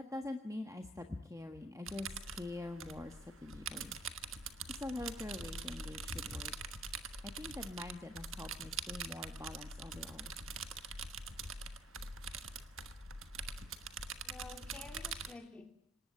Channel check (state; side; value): normal; both; correlation 0.63